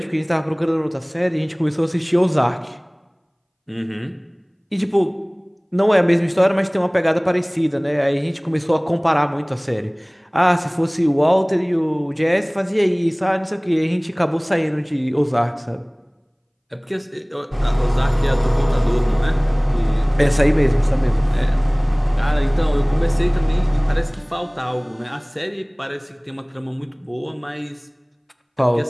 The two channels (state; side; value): identical; both; correlation 1.00